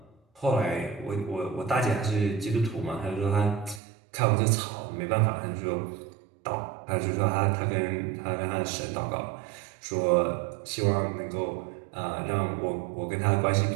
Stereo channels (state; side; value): drops out; left; at 3.8 s